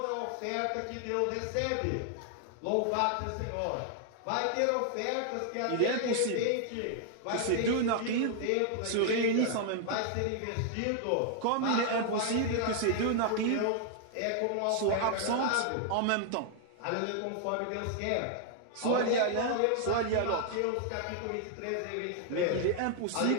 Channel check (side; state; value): both; different; correlation 0.00